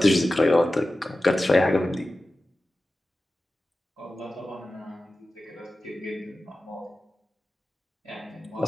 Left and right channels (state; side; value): normal; both; correlation 0.95